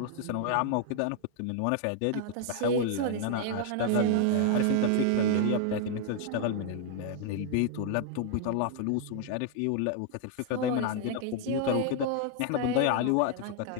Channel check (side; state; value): both; different; correlation 0.00